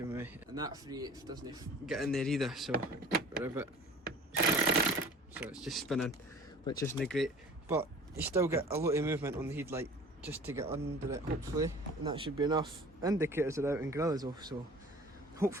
with me, and that 3/8 doesn't get in there either, so we're a bit... So it's just spinning, which isn't great, but you still get a lot of movement on the headlight just to get under it, hopefully, and that should be enough. Indicators are out and grill is off, so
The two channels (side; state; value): both; normal; correlation 0.45